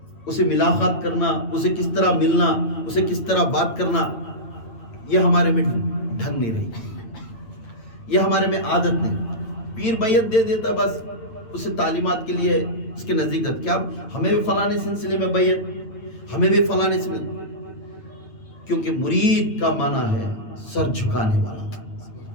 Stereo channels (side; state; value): right; late; 8.9 ms